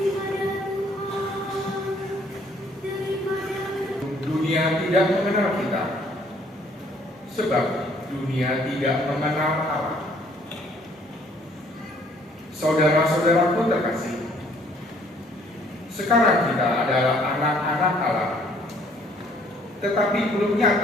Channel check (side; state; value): both; normal; correlation 0.61